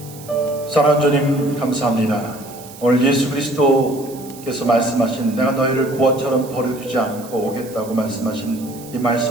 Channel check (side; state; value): right; noise; hiss, 19 dB below the sound